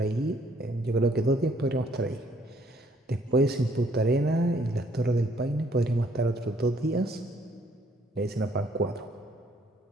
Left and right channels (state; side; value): normal; both; correlation 0.65